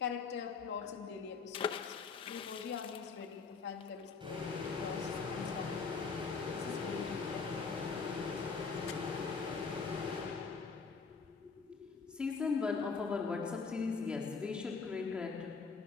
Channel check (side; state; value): right; quieter; 4.9 dB